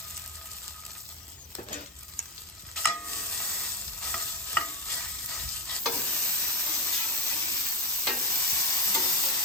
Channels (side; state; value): both; normal; correlation 0.14